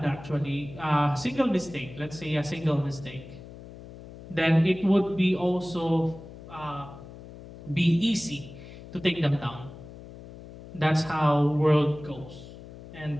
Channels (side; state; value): left; noise; hum, 16 dB below the sound